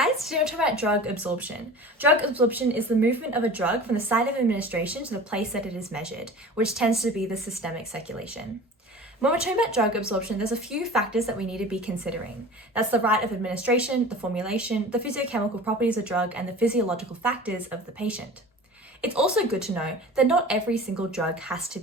today we're talking about drug absorption. Drug absorption is the movement of a drug from the site of administration to the place that it is measured, which tends to be the systemic circulation. When we're talking about drug absorption, there's a few factors that we need to be considering. That's the route of administration, the formulation, the physiochemical properties of drug, and the physiological factors of the patient. It's also good to know that not every single drug has to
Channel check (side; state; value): both; normal; correlation 0.39